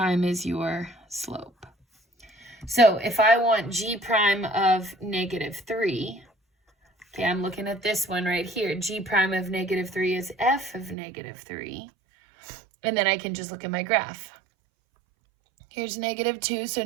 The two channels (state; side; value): drops out; left; at 11.0 s